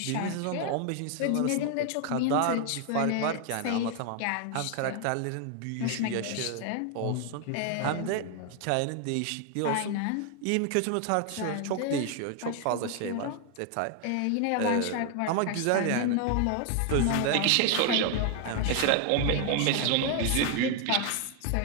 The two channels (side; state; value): both; different; correlation 0.00